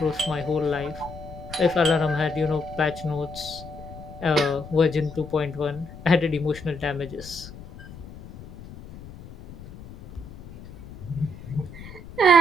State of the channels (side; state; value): left; noise; rumble, 16 dB below the sound